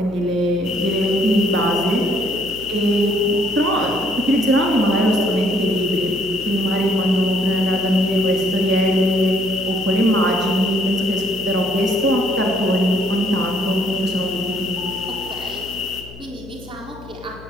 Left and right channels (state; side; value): noise; left; hum, 18 dB below the sound